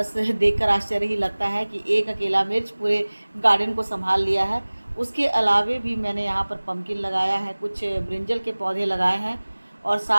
देखकर आश्चर्य ही लगता है कि एक अकेला मिर्च पूरे गार्डन को संभाल लिया है। उसके अलावे भी मैंने यहाँ पर पम्पकिन लगाया है, कुछ ब्रिंजल के पौधे लगाए हैं, और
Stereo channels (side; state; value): both; inverted; correlation -1.00